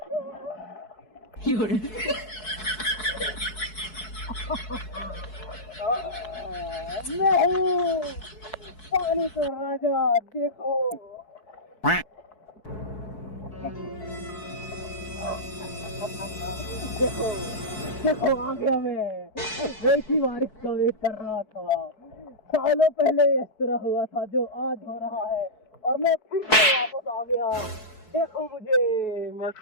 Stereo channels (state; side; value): late; right; 4.7 ms